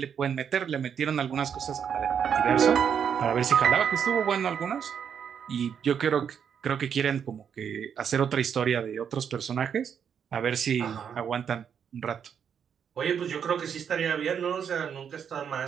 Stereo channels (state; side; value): quieter; left; 7.7 dB